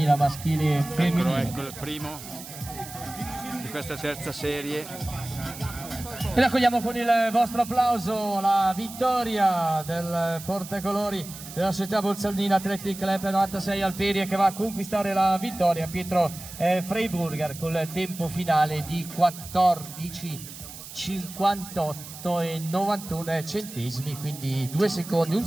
maschile e femminile. Ecco il primo di questa terza serie. E raccogliamo con il vostro applauso la vittoria del portacolori della società Bolzaldina Athletic Club 96 Alperia, che va a conquistare la vittoria. Pietro Freiburger con il tempo finale di 14:58 e 91 centesimi, quindi 2 secondi, 1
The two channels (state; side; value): noise; right; hiss, 13 dB below the sound